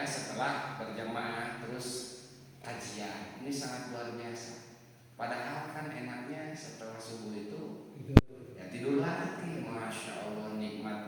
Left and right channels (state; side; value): identical; both; correlation 1.00